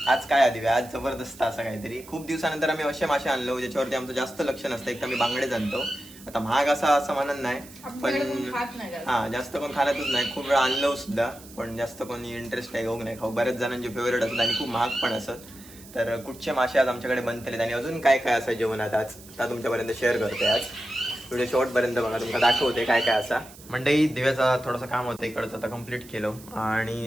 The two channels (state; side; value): noise; right; hiss, 20 dB below the sound